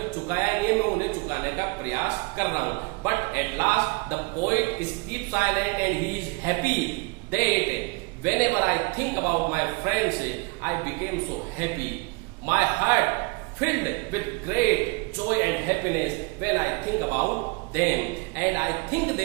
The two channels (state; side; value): quieter; left; 28.3 dB